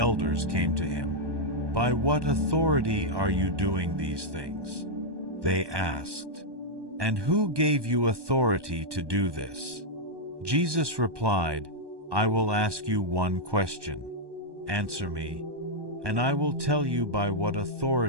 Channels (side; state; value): left; late; 1.2 ms